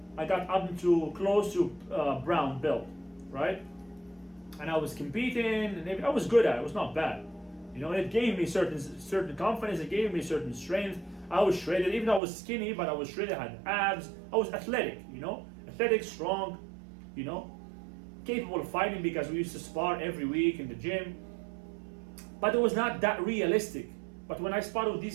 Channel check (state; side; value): drops out; left; at 12.2 s